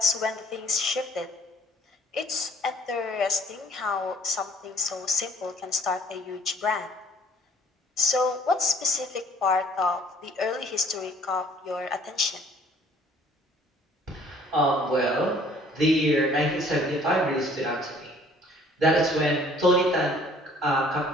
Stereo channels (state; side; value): normal; both; correlation 0.56